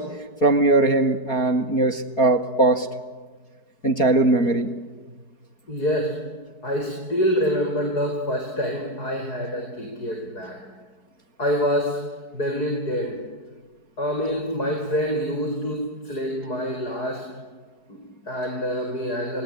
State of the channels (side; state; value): right; late; 4.7 ms